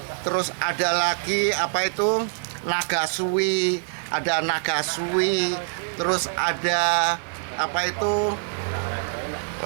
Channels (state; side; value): silent; left; 62 dB below the other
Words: terus ada lagi apa itu nagasui, ada nagasui, terus ada apa itu